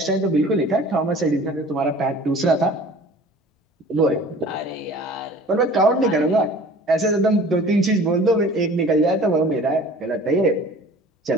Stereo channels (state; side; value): normal; both; correlation 0.45